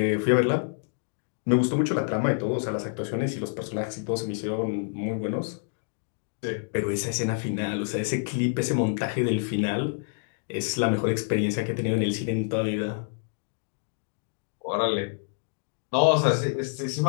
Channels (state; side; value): silent; right; digital silence